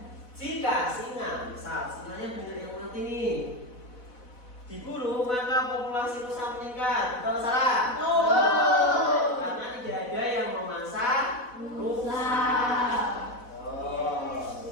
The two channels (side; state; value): right; late; 4.1 ms